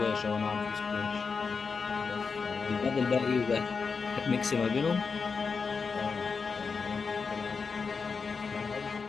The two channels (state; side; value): quieter; right; 5.2 dB